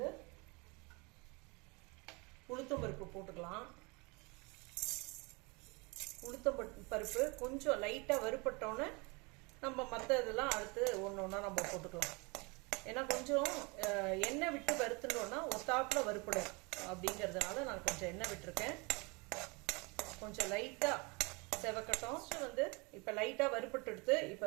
உளுத்தம்பருப்பு போட்டுக்கலாம். உளுத்தம்பருப்பு கொஞ்சம் லைட்டாக வறுப்பட்டோன்னே நம்ம மற்ற இதெல்லாம் அடுத்து ஒன்று ஒன்றா நம்ம போட்டுக்கலாம். ஏன்னா கொஞ்சம் எண்ணெய் விட்டு வறுத்துட்டோன்னா ஒத்தாப்பில் வறுப்படும் அப்படிங்கிறதுனால நான் கொஞ்சம் எண்ணெய் விட்டுருக்கேன். கொஞ்சம் லைட்டாக செவக்கட்டும். வந்து இப்போ லைட்டாக வறுப்பட்டு எடுத்து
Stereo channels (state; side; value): quieter; left; 28.7 dB